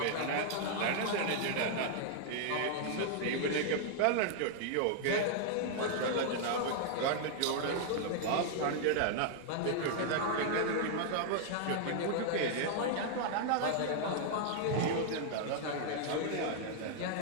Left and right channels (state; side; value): different; both; correlation -0.01